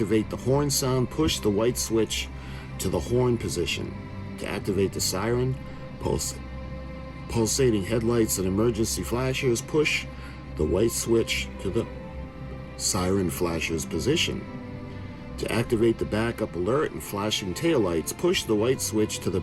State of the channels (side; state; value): both; identical; correlation 1.00